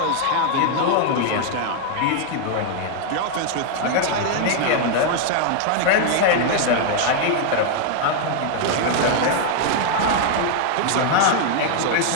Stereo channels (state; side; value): different; both; correlation 0.00